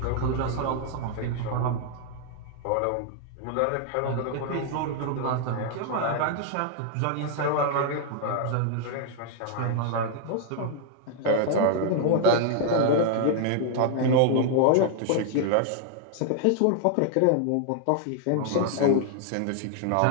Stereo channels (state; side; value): different; both; correlation 0.00